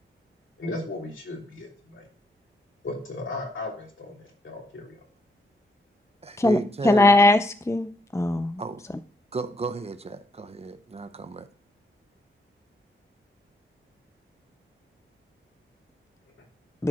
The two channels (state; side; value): normal; both; correlation 0.74